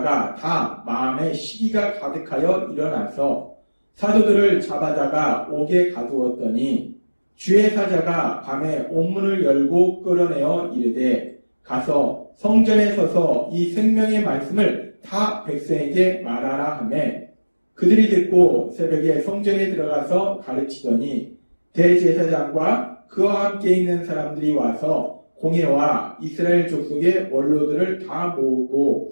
다 마음에 시기가 가득하여 일어나서 사도들을 잡아다가 옥에 가두었더니 주의 사자가 밤에 옥문을 열고 끌어내어 이르되 가서 성전에 서서 이 생명의 말씀을 다 백성에게 말하라 하매 그들이 듣고 새벽에 성전에 들어가서 가르치더니 대제사장과 그와 함께 있는 사람들이 와서 공회와 이스라엘 족속의 원로들을 다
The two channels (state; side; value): inverted; both; correlation -1.00